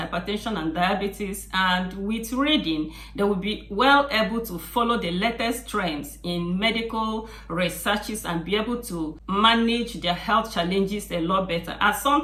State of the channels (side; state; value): both; identical; correlation 1.00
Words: and diabetes, and with reading, they will be well able to follow the latest trends in medical researches and be able to manage their health challenges a lot better. As